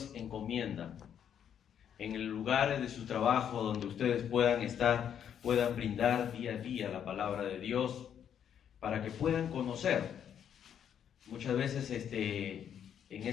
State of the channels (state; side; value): quieter; right; 8.9 dB